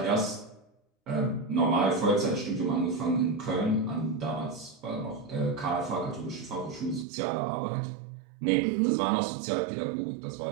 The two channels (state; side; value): drops out; left; at 7.1 s